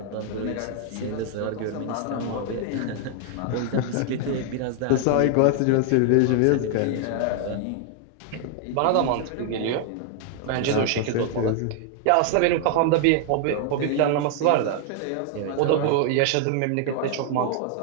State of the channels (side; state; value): both; different; correlation 0.00